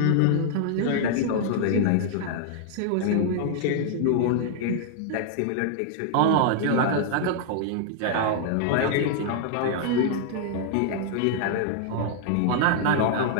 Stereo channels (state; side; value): different; both; correlation -0.01